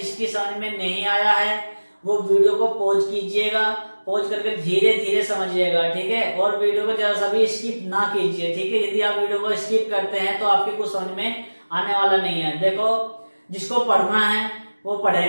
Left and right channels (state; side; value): inverted; both; correlation -1.00